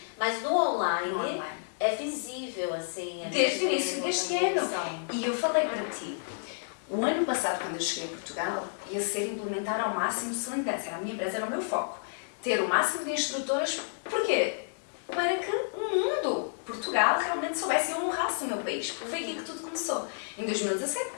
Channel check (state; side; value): silent; right; digital silence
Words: mas no online é visível, assim. Desde o início deste ano. E eu falei para ti, o ano passado, quando eu cheguei a Portugal, ia ser implementar ao máximo Sling Dance. Era a minha empresa, era o meu foco. Ter o máximo de instrutoras. Porquê? Para que o mundo, Portugal, realmente soubesse e honrasse o meu país. Porque foi aqui que tudo começou. Em 2017,